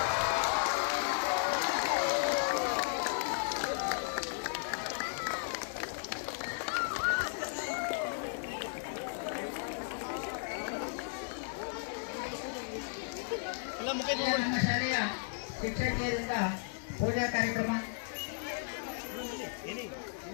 ನಮ್ಮ ಶಾಲೆಯ ಶಿಕ್ಷಕಿಯರಿಂದ ಪೂಜಾ ಕಾರ್ಯಕ್ರಮ.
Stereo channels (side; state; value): right; silent; digital silence